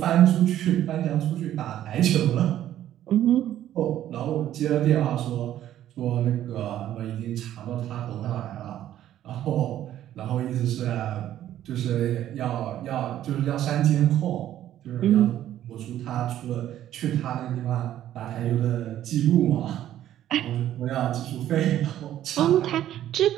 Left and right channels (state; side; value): quieter; left; 12.1 dB